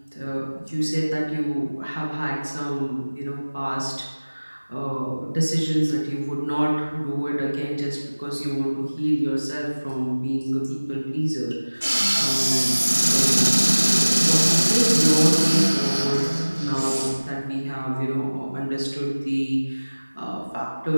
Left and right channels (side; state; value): both; inverted; correlation -1.00